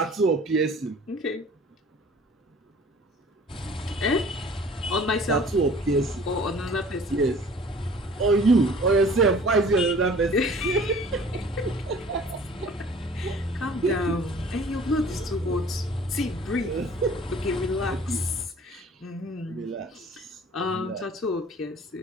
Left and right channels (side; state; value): both; normal; correlation 0.49